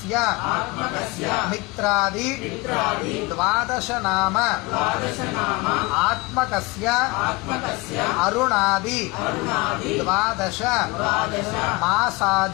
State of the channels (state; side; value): quieter; right; 23.9 dB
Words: మిత్రాది ద్వాదశ నామ ఆత్మకస్య అరుణాది ద్వాదశ